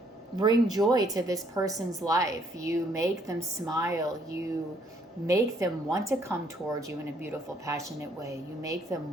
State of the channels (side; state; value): both; normal; correlation 0.67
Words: bring joy to this person's life. You make them smile. You make them want to come towards you in a beautiful, passionate way. You make them